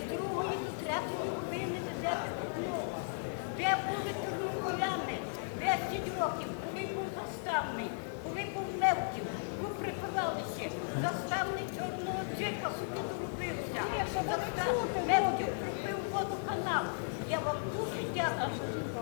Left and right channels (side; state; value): right; silent; digital silence